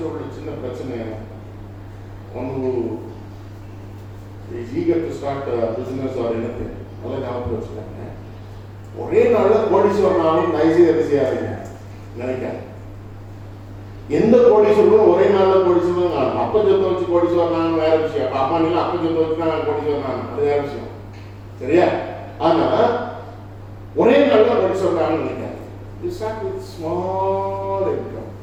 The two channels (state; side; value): identical; both; correlation 1.00